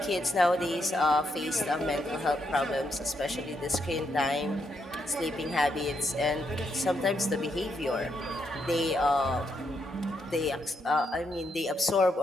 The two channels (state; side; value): normal; both; correlation 0.79